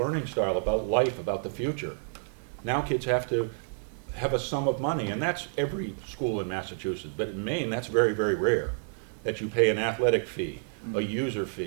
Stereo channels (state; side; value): silent; left; digital silence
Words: style, about life, about the future. Now kids have to have a sum of money, and that's every school in Massachusetts, but in Maine that's very, very rare, that you pay an athletic fee, a user